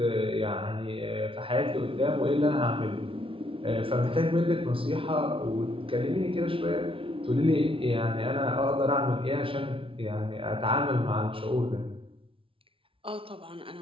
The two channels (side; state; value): left; late; 0.26 ms